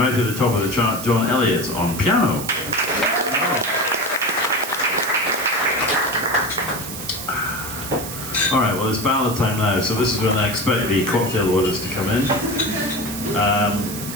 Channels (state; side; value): noise; right; hiss, 9 dB below the sound